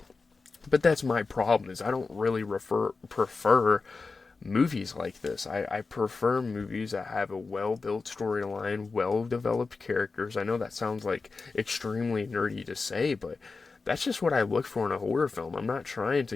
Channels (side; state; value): right; quieter; 4.2 dB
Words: But that's my problem, is I don't really prefer movies like this. I prefer movies that have a well-built storyline, well-developed characters. I know that sounds extremely nerdy to say, but that's just what I look for in a horror film. I'm not trying